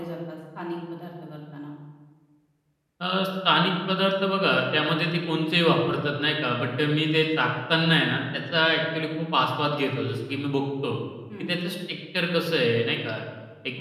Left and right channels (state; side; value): identical; both; correlation 1.00